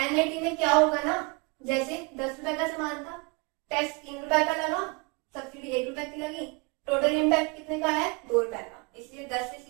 NIT में क्या होगा ना, जैसे 10 रुपए का सामान था, टैक्स 3 रुपए का लगा, सब्सिडी 1 रुपए की लगी, टोटल इम्पैक्ट कितने का है 2 रुपए का, इसलिए 10 से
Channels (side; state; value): left; quieter; 29.6 dB